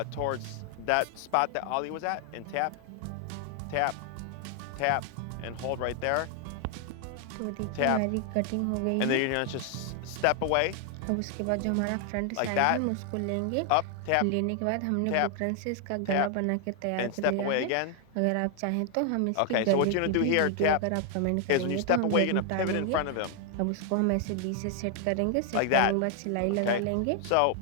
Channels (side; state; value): both; different; correlation 0.00